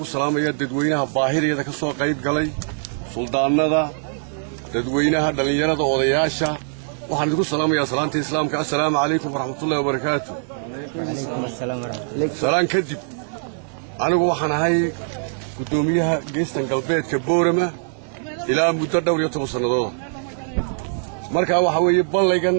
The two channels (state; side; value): silent; left; digital silence